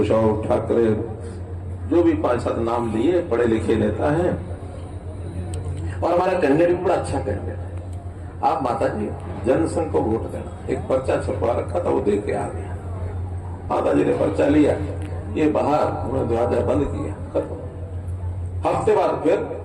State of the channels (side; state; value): both; identical; correlation 1.00